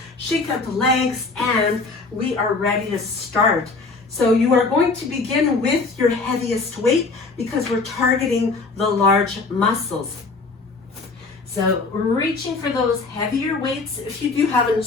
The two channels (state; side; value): quieter; right; 3.9 dB